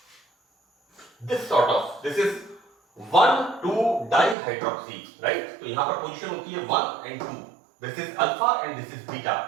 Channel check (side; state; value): left; drops out; at 4.4 s